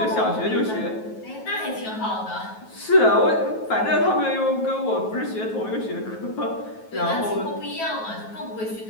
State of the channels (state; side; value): late; right; 9.3 ms